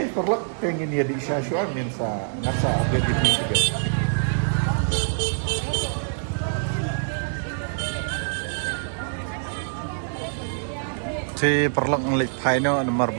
perlak pengen dia di Syashua min sa ngasa update ini juga si perlak ngelik paino nomor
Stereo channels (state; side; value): silent; left; 62 dB below the other